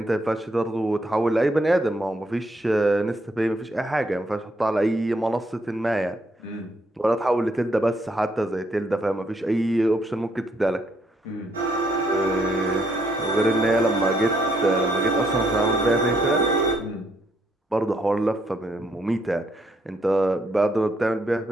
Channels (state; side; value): normal; both; correlation 0.73